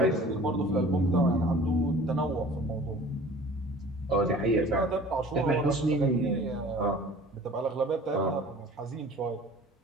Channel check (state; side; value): normal; both; correlation 0.45